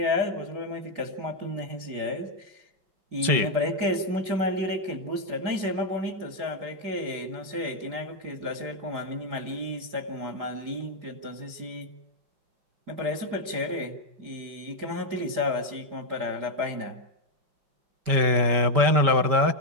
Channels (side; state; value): left; late; 5.2 ms